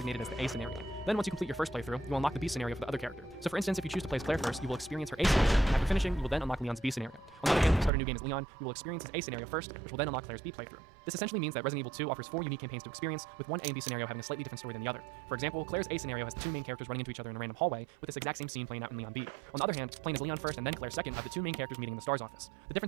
as the A scenario. Then once you complete your first playthrough, you will unlock the B scenario for the other character. So for instance, if you choose to play as Claire first, you will experience her A scenario, and after finishing, you will then unlock Leon's B scenario. On the other hand, if you start a new game as Leon, you will experience his A scenario first, which will then unlock Claire's B playthrough. This essentially means that Resident Evil 2 offers 4 unique campaigns to experience, with one A and B scenario having a slightly different story than the other. For example, Claire's A scenario has the 2 main characters running into each other in a random hallway, with this exact same scene playing out in Leon B. On the other hand, playing as Leon first and then Claire second have the 2 main characters meeting in the STARS office. The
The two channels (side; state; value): left; drops out; at 7.9 s